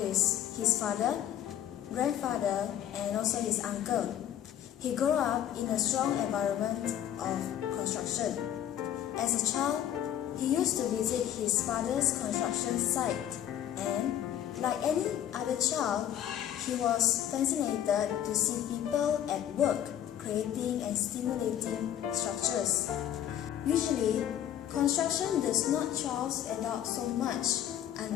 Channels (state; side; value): quieter; right; 10.9 dB